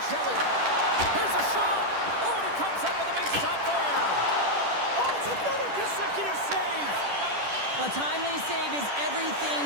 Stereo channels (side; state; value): left; late; 10 ms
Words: Here's a shot. Oh, and he comes up with a big shot there. Oh, it's another consecutive save. A timely save is